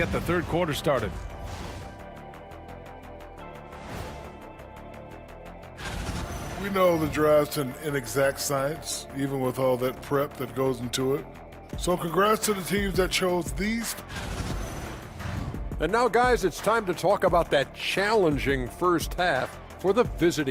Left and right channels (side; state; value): both; identical; correlation 1.00